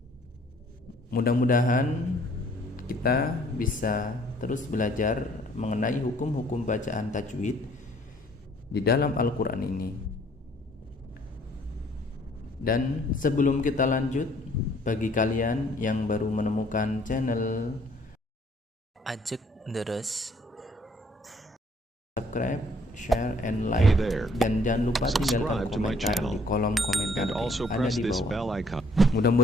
Mudah-mudahan kita bisa terus belajar mengenai hukum-hukum bacaan tajwid di dalam Al-Quran ini. Dan sebelum kita lanjut, bagi kalian yang baru menemukan channel Ajak Deres, subscribe, share, and like, dan jangan lupa tinggalkan komentar di kolom komentar yang ada di bawah.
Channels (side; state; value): both; normal; correlation 0.61